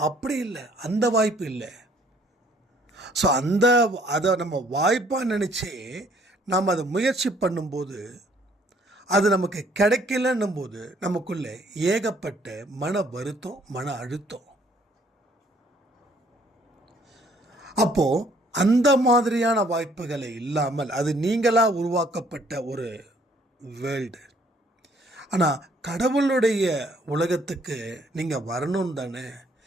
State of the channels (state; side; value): normal; both; correlation 0.62